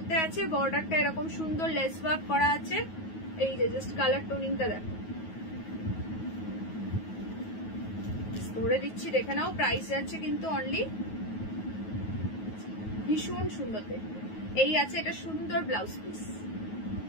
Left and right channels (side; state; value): right; late; 9.3 ms